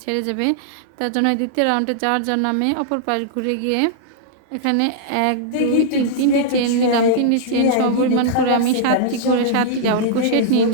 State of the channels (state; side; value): different; both; correlation -0.02